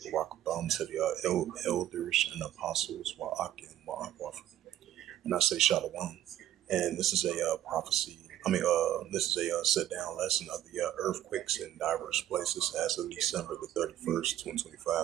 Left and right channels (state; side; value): quieter; left; 12.0 dB